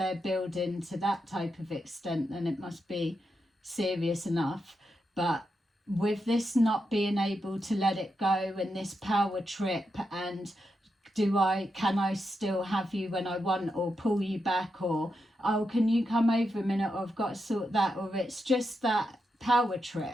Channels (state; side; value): normal; both; correlation 0.85